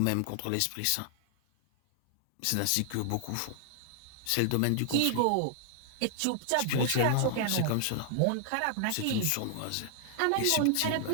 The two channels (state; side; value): different; both; correlation -0.01